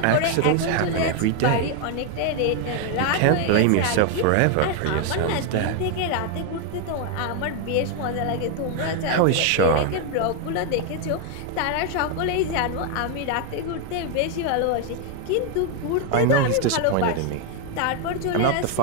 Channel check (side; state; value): both; different; correlation 0.01